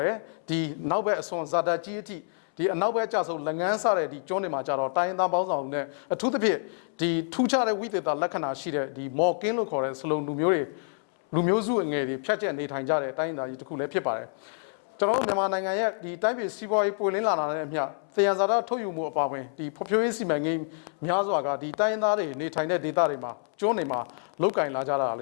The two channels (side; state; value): right; silent; 60 dB below the other